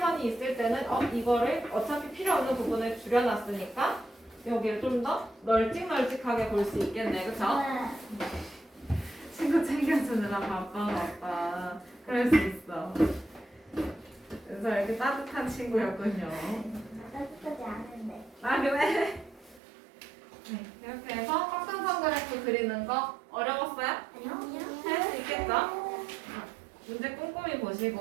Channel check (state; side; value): drops out; left; at 19.6 s